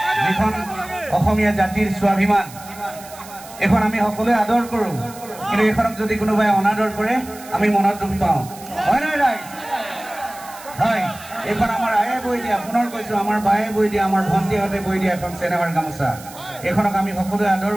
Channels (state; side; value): noise; right; hiss, 18 dB below the sound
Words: যিখন অসমীয়া জাতিৰ স্বাভিমান এখন আমি সকলোৱে আদৰ কৰোঁ কিন্তু এইখনক যদি কোনোবাই অনাদৰ কৰে আমি মনত দুখ পাওঁ হয় নাই ৰাইজ এইখন আমাৰ আয়ে বৈ দিয়া পুনৰ কৈছোঁ আমাৰ বায়ে বৈ দিয়া আমাৰ ভণ্টিহঁতে বৈ দিয়া এখন চেনেহাৰ গামোচা এইখনক আমি সকলোৱে আদৰ